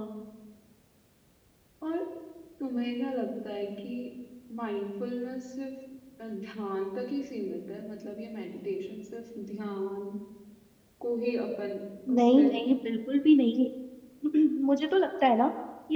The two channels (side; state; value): both; identical; correlation 1.00